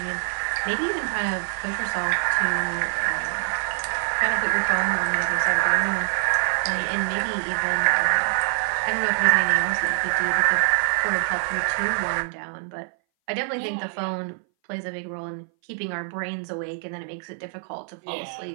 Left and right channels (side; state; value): left; silent; 59 dB below the other